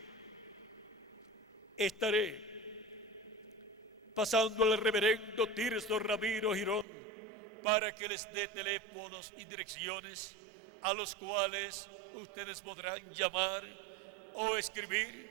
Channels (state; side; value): drops out; left; at 6.9 s